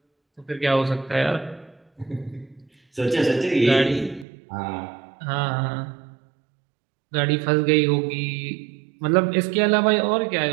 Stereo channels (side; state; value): left; drops out; at 4.2 s